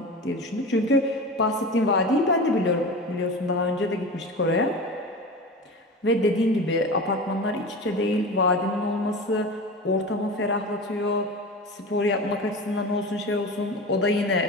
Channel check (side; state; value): both; normal; correlation 0.30